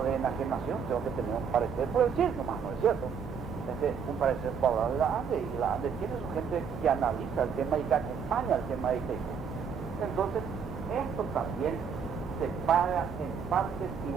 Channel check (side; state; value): left; quieter; 6.7 dB